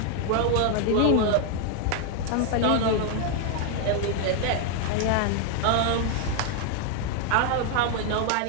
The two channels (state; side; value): different; both; correlation 0.00